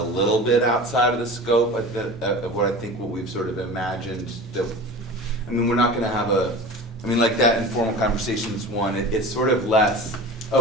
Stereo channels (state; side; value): normal; both; correlation 0.34